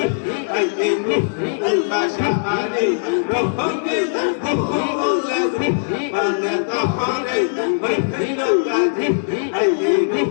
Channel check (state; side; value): silent; right; digital silence